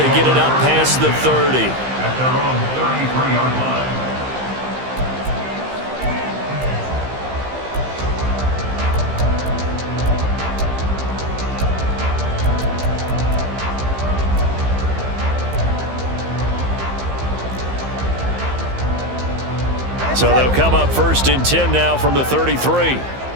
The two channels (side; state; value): left; late; 15 ms